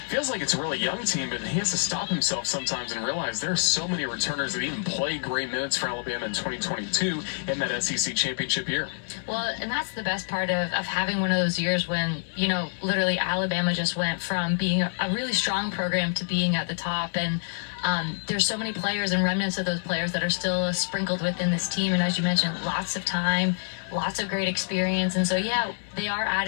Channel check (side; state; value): right; silent; digital silence